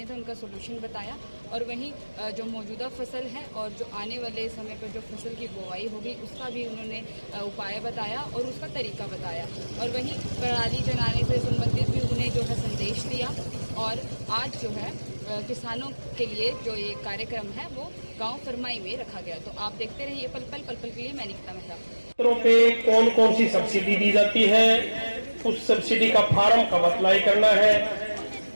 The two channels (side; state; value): both; inverted; correlation -1.00